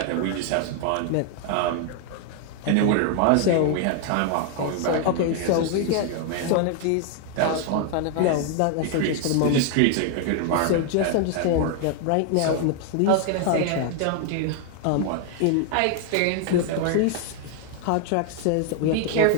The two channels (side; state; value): both; different; correlation 0.00